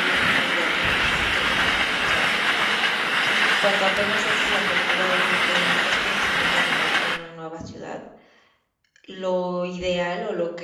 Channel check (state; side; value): identical; both; correlation 1.00